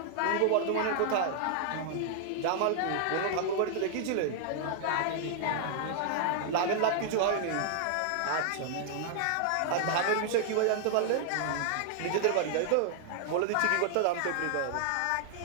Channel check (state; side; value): different; both; correlation -0.01